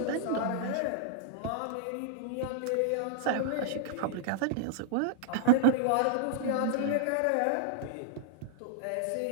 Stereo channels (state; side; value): different; both; correlation -0.01